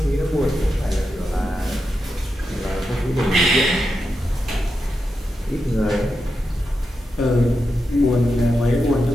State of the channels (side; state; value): both; normal; correlation 0.87